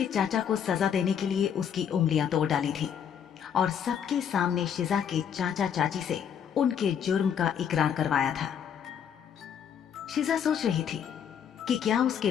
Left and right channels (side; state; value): right; quieter; 8.3 dB